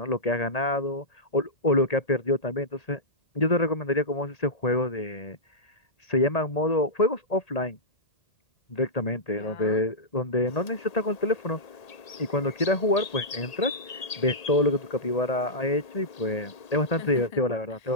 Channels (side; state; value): right; late; 1.8 ms